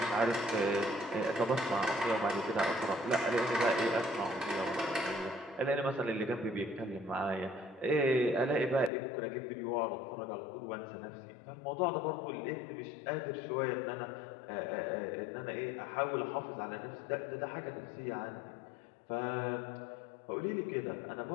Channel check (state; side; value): drops out; right; at 8.9 s